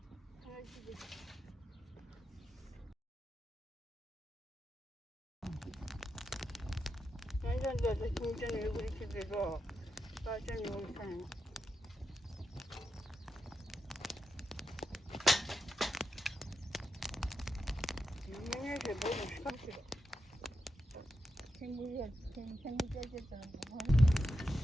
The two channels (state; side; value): normal; both; correlation 0.86